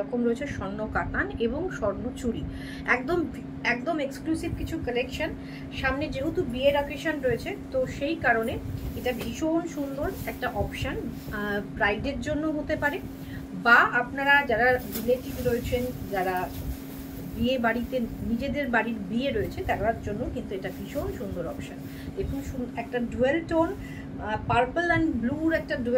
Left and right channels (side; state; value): both; identical; correlation 1.00